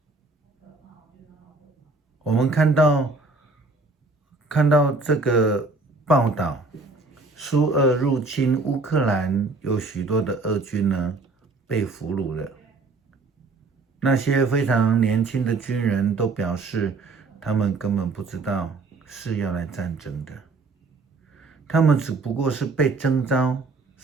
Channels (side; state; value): left; quieter; 3.8 dB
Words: 我们看到这个报道，苏俄入侵乌克兰，有许多的俄军呢被俘虏了。那些非常年轻的军人都表示，他们根本不知道是要来战争的，他们只不过是被征召，